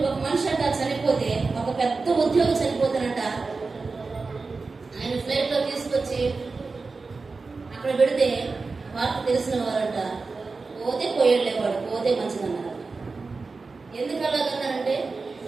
మనిషి అంట చనిపోతే, ఒక పెద్ద ఉద్యోగం చనిపోతానంట, ఆయన ఫ్లైట్ లో తీసుకొచ్చి అక్కడ పెడితే వార్త తెలిసిన వారంట పోతే పోయేళ్ళేవాడు, పోతే మంచిదన్నారు. ఎందుకు అలాగన్నారంటే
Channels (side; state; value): left; quieter; 4.1 dB